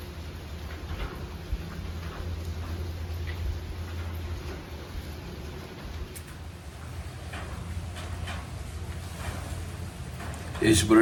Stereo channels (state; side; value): identical; both; correlation 1.00